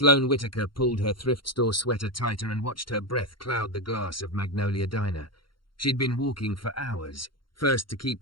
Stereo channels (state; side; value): late; right; 0.73 ms